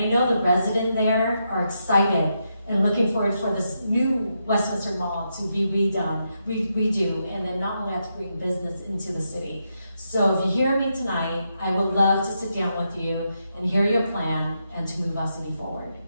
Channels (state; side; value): inverted; both; correlation -0.83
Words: know the residents there are excited and looking forward for this new Westminster Mall to be redo, and then not only have to bring business into the city. So if you hear me tonight, I would love to sit down with you and hear your plan and to move our city forward.